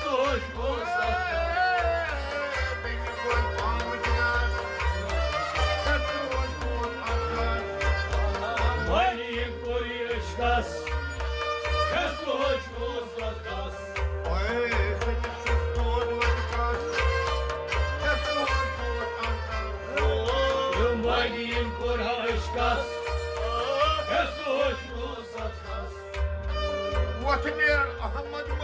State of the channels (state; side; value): identical; both; correlation 1.00